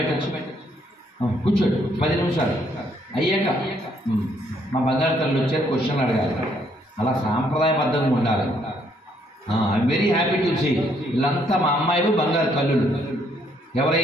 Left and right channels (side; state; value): both; normal; correlation 0.69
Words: కూర్చోండి 10 నిమిషాలు అయ్యాక మా బంగారు తల్లి వచ్చారు, క్వశ్చన్లు అడగాలి. అలా సాంప్రదాయబద్ధంగా ఉండాలి. I'm very happy to see వీళ్ళంతా మా అమ్మాయిలు బంగారు తల్లులు.